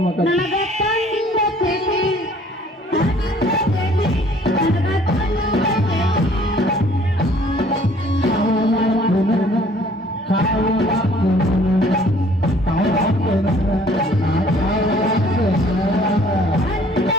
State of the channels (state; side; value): normal; both; correlation 0.56